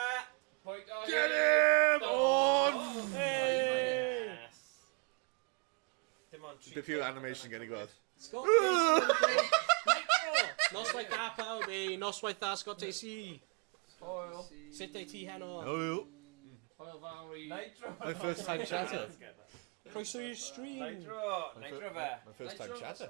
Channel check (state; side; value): quieter; left; 33.3 dB